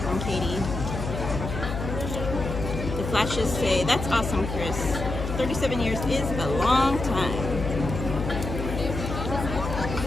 Katie. The flashes say, that's awesome, Chris. 37 years is a long time.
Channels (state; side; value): noise; left; hum, 5 dB below the sound